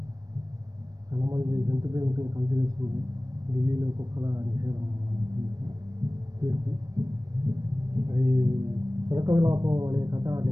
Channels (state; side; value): late; left; 0.17 ms